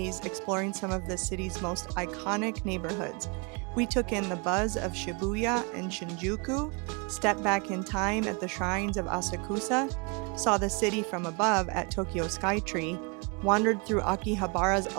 exploring some of the city's most iconic neighborhoods. We took in the buzz of Shibuya and Shinjuku, stepped back in time at the shrines of Asakusa, saw the city from above at Tokyo Skytree, wandered through Akihabara's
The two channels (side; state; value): left; quieter; 31.7 dB